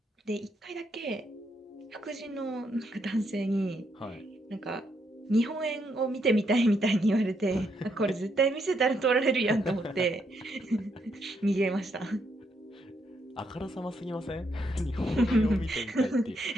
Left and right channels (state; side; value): normal; both; correlation 0.77